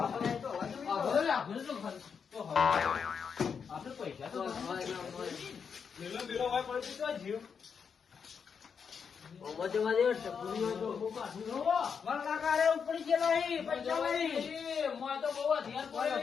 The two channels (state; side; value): quieter; right; 6.4 dB